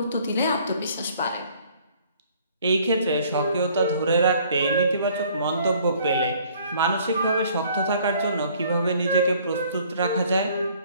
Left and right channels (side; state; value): both; inverted; correlation -0.58